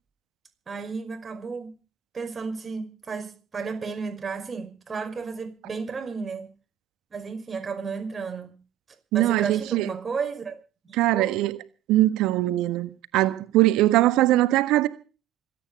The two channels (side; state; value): left; quieter; 12.5 dB